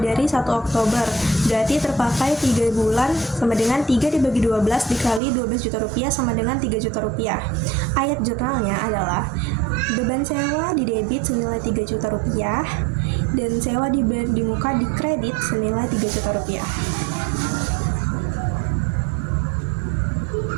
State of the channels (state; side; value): drops out; left; at 5.2 s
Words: dari 1 Oktober. Berarti terpakai 3 bulan sama dengan 3 dibagi 12 dikali 12 juta rupiah sama dengan 3 juta rupiah. Ayat jurnalnya adalah beban sewa didebit senilai 3 juta rupiah dan sewa dibayar di muka dikredit senilai 3 juta rupiah.